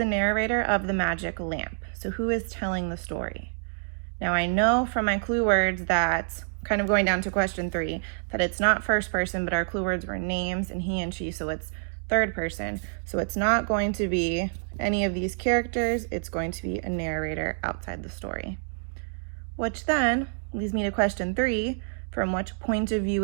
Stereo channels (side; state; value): left; silent; digital silence